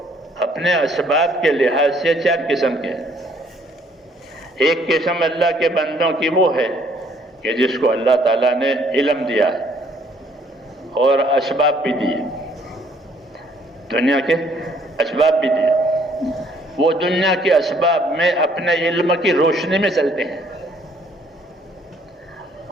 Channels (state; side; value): normal; both; correlation 0.63